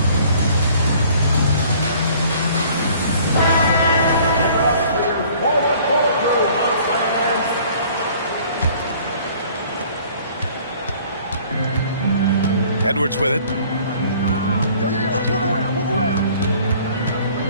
Edwards with it.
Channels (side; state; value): both; inverted; correlation -0.54